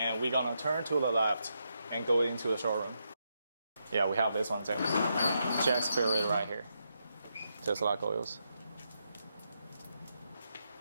we're gonna turn to the left and go into the showroom. Yeah, we have this one too. Jack's favorite right here, just like oils.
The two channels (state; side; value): inverted; both; correlation -0.82